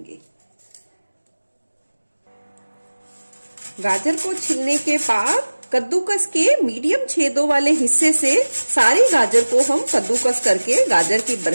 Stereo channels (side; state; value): both; inverted; correlation -1.00